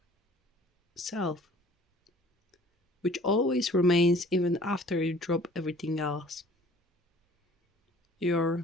self, which always remains even after you drop everything else.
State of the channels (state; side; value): normal; both; correlation 0.52